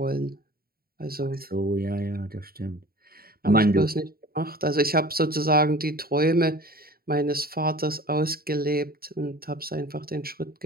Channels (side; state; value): left; late; 0.44 ms